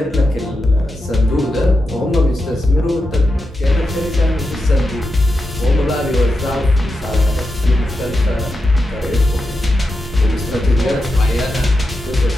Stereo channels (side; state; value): both; normal; correlation 0.89